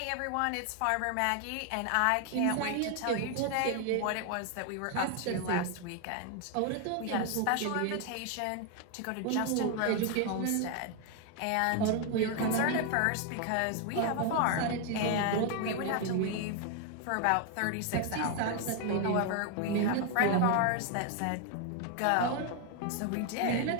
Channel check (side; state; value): both; different; correlation 0.01